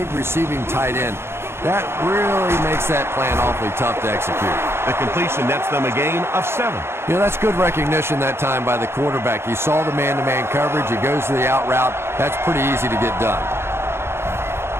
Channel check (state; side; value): late; left; 0.12 ms